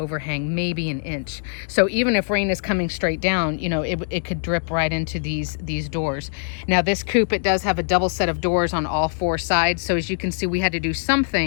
maybe an inch. So even if rain is coming straight down, it could drip right into these doors. Now this coop, it does have a double set of doors on all four sides. So as you can see, we had to do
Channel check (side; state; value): right; silent; digital silence